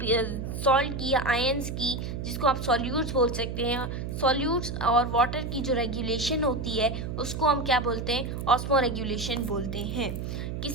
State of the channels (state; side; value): noise; right; hum, 5 dB below the sound